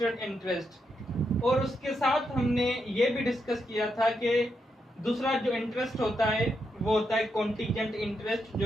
इंटरेस्ट और उसके साथ हमने ये भी डिस्कस किया था कि दूसरा जो इंटरेस्ट होता है वो होता है कॉन्टीजेंट इंटरेस्ट,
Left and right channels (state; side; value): normal; both; correlation 0.82